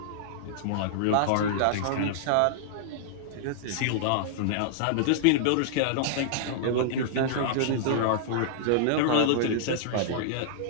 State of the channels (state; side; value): different; both; correlation -0.01